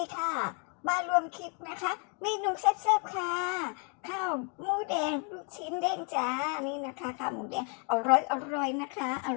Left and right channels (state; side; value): quieter; right; 38.1 dB